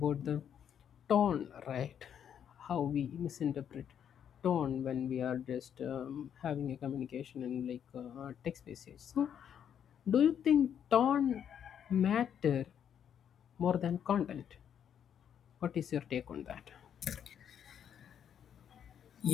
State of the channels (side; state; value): right; quieter; 8.8 dB